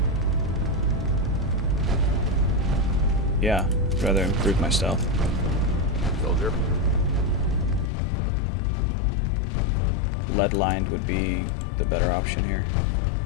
Yeah, I'd rather improve my stealth. Soldier. Lead lined would be the better option here.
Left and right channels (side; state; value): right; drops out; at 7.9 s